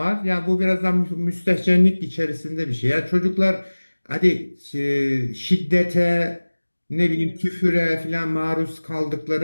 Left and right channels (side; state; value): both; inverted; correlation -1.00